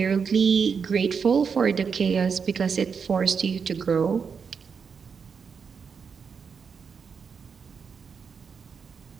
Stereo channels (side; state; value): left; quieter; 6.1 dB